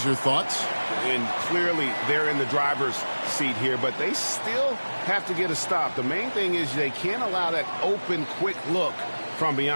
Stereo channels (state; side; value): inverted; both; correlation -1.00